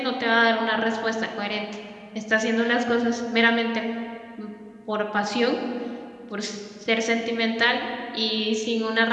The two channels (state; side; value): identical; both; correlation 1.00